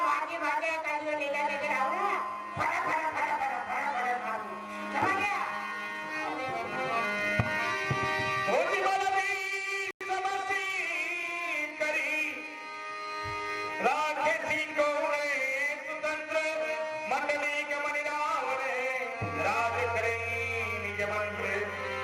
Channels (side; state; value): both; identical; correlation 1.00